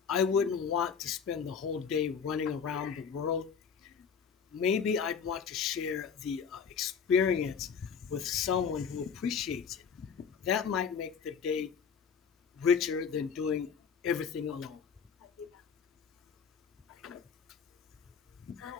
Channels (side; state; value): right; quieter; 6.6 dB